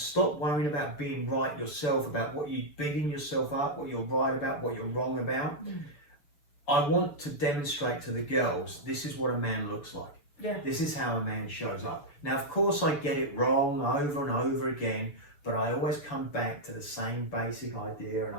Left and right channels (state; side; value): late; right; 7.1 ms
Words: worrying about being right yourself, about what you're beating yourself up, what you're right about, what you're wrong about, I want to demonstrate to the girls, this is what a man looks like. Yeah. This is how a man shows up. Now, of course, I get it wrong over and over again, but I always come back to the same basic idea and